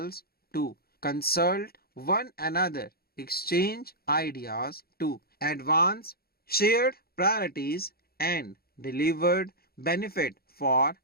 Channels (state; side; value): late; right; 0.44 ms